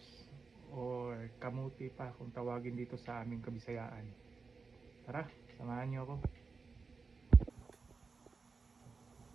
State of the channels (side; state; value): left; quieter; 4.5 dB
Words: or kamuti pa kung tawagin dito sa aming Kabisayaan. Tara, samahan niyo ako.